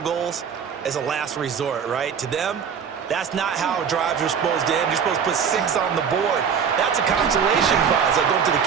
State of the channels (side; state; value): left; quieter; 7.1 dB